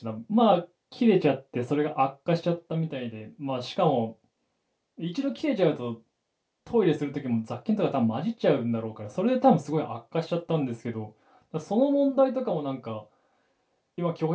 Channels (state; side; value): identical; both; correlation 1.00